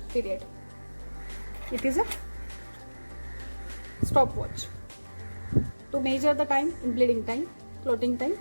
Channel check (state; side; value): inverted; both; correlation -1.00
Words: period. It is a stopwatch to measure the time in bleeding time, clotting time.